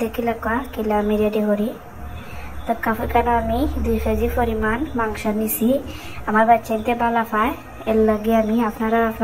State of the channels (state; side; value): identical; both; correlation 1.00